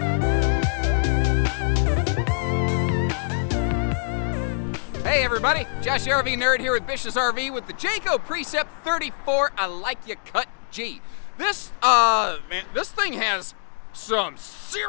Hey everybody, Josh the RV Nerd here with Bish's RV with the Jayco Precept 34 I Like Ya Cut G. This thing has some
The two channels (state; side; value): silent; right; digital silence